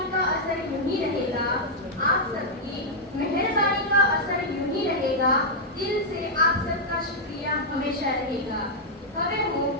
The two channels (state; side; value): normal; both; correlation -0.05